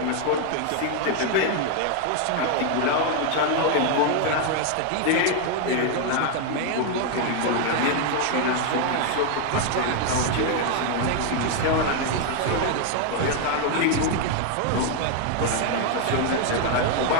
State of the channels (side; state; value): both; different; correlation 0.01